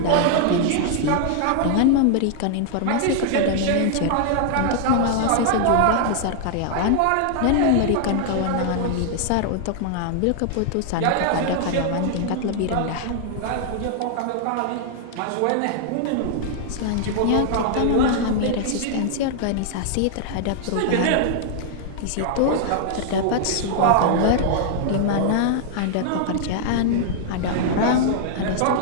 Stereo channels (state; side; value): different; both; correlation 0.00